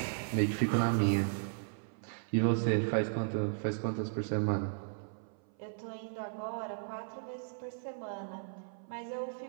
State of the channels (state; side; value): silent; left; 54 dB below the other